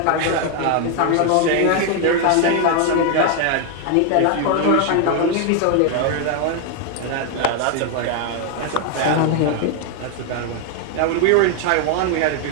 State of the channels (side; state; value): both; different; correlation 0.01